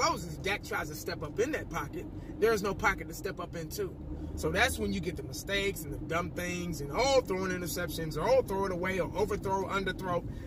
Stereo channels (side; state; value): both; identical; correlation 1.00